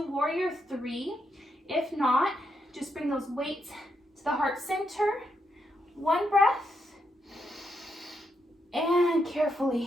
warrior 3. If not, just bring those weights to the heart center. One breath. And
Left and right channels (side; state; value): both; normal; correlation 0.81